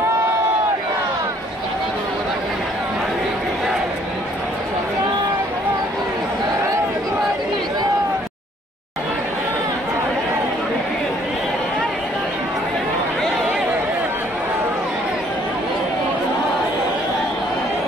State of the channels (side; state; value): both; normal; correlation 0.62